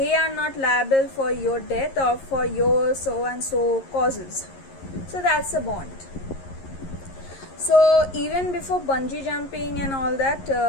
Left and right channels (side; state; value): right; late; 11 ms